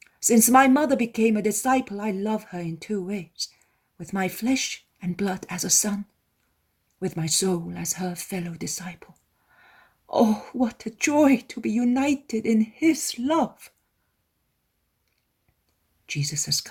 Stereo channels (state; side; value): identical; both; correlation 1.00